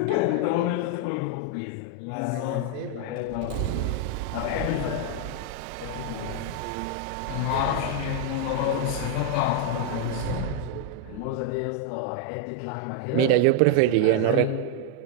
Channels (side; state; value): both; different; correlation 0.00